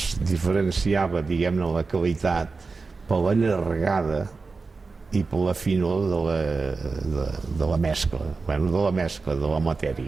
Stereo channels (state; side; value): quieter; left; 4.2 dB